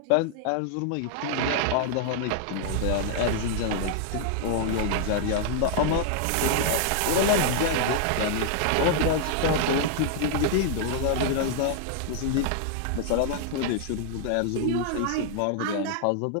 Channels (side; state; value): both; different; correlation -0.01